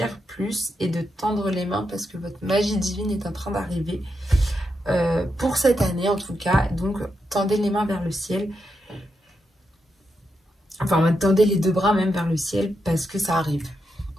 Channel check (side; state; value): both; normal; correlation 0.84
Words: plus et de tendre les mains parce que votre magie divine est en train d'arriver. Pour cette année, en tout cas. Donc, tendez les mains vers le ciel. Enfin, tendez les deux bras même vers le ciel parce que ça arrive.